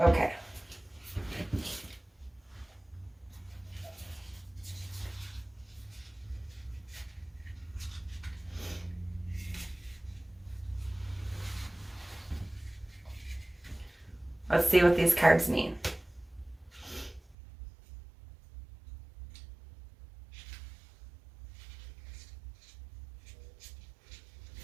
Okay. Let's see what these cards mean.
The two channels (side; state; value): left; drops out; at 17.4 s